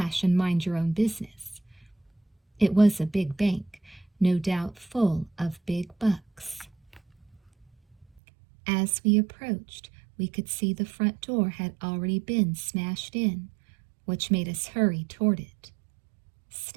and mind your own business. It was a big bank, no doubt full of big bucks. As we approached, we could see the front door had already been smashed in, which made us hurry toward it.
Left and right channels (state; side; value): drops out; left; at 8.2 s